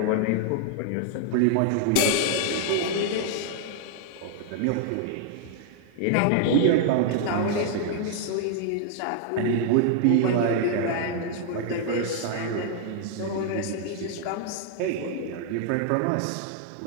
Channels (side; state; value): both; different; correlation 0.00